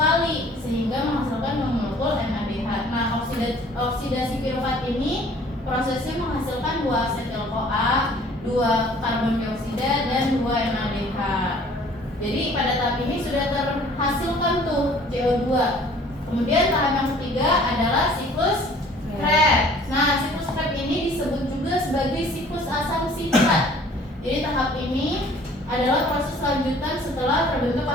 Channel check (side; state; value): both; normal; correlation 0.53